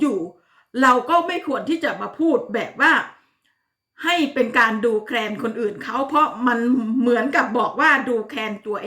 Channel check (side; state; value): both; identical; correlation 1.00